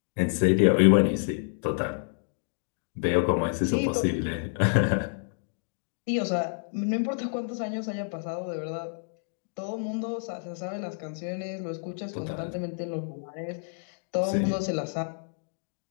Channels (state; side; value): silent; right; digital silence